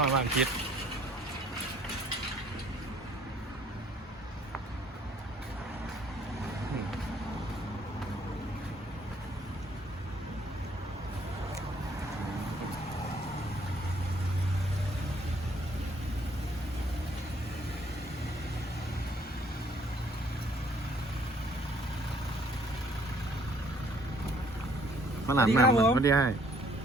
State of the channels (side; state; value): both; normal; correlation 0.62